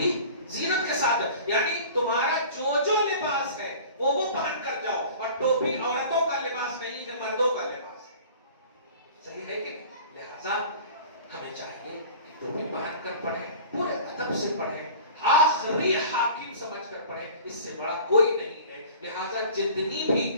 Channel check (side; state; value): both; inverted; correlation -0.42